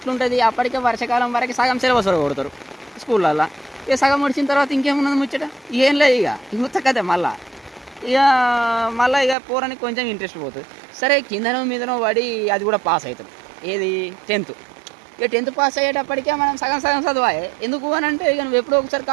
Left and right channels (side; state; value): left; drops out; at 9.3 s